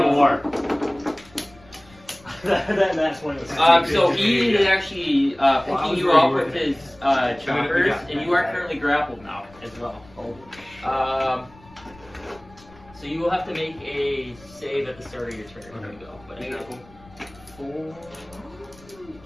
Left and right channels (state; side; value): noise; left; rumble, 24 dB below the sound